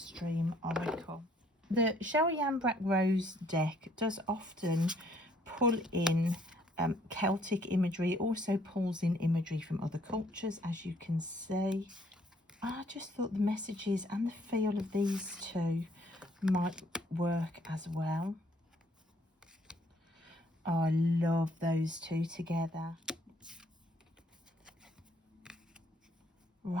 Oracle. The Cheryl Yambrak Rose deck does often pull in Celtic imagery. It also pulls in imagery from other cultures, as you can see. I just thought the messages and the feel of these two might work as well. Oh, I love those two together.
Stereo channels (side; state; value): both; normal; correlation 0.64